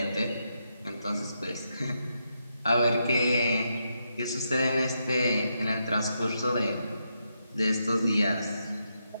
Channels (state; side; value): inverted; both; correlation -0.82